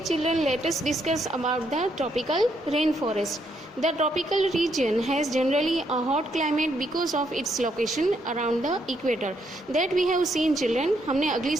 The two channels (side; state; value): both; normal; correlation 0.75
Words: children, let us discuss about the tropical rainforest. The tropical region has generally a hot climate because of its location around the equator. That we have seen, children. हमने अगली